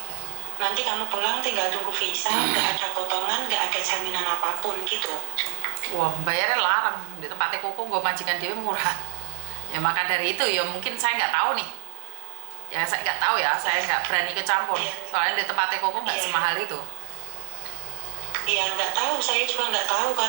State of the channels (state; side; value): silent; left; 61 dB below the other